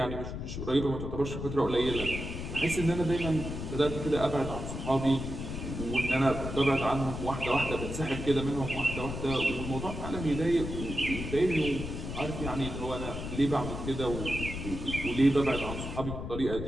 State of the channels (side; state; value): left; noise; rumble, 6 dB below the sound